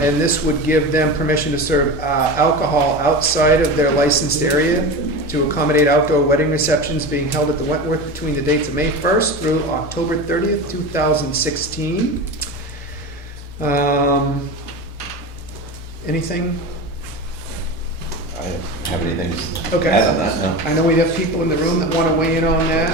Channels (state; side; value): normal; both; correlation 0.27